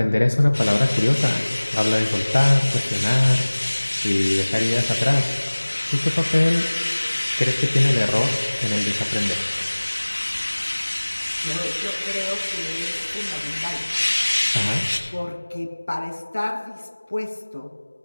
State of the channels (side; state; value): both; inverted; correlation -1.00